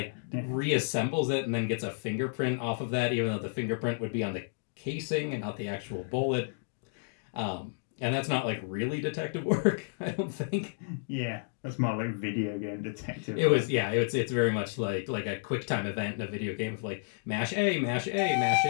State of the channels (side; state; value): right; silent; digital silence